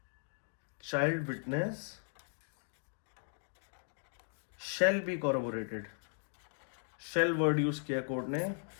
child witness shall be corroborated. Shall word use किया कोर्ट ने,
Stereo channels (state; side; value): silent; right; 53 dB below the other